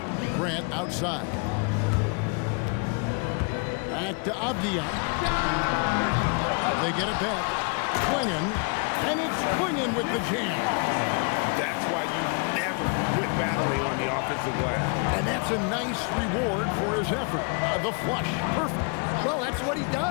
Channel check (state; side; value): quieter; right; 36.1 dB